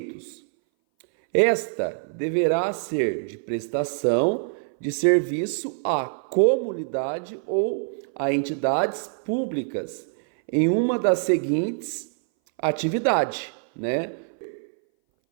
esta deverá ser de prestação de serviço à comunidade ou a entidades públicas em uma das seguintes atividades, né?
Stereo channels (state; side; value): silent; left; 59 dB below the other